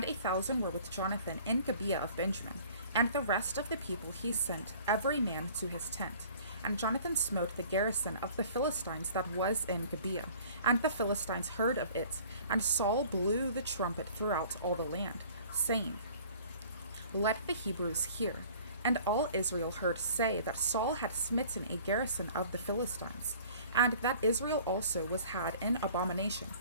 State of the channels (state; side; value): inverted; both; correlation -0.49